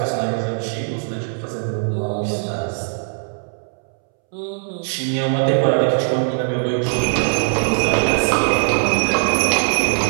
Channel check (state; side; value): silent; left; 66 dB below the other